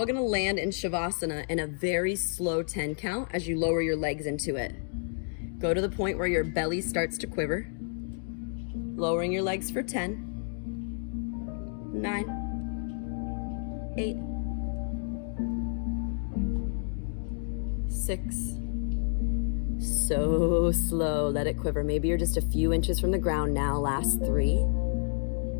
gonna land in Shavasana in a very slow 10 count as you lower your legs into it. Go to the point where your belly starts to quiver. Lowering your legs for 10, 9, 8, 6. So slow, let it quiver. Maybe you're just a few inches from the ground now. Last 3,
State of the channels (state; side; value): silent; right; 58 dB below the other